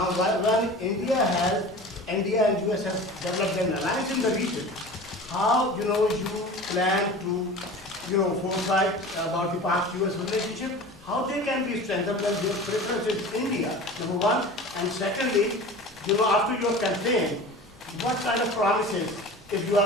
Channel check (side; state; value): both; normal; correlation 0.36